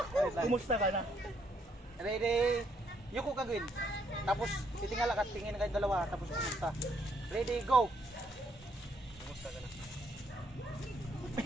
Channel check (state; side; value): normal; both; correlation 0.71